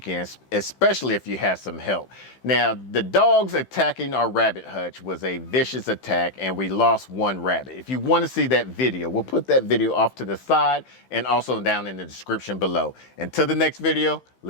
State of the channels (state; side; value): late; right; 15 ms